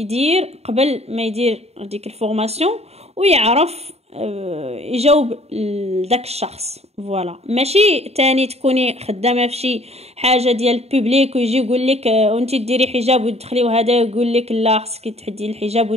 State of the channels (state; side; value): late; left; 0.30 ms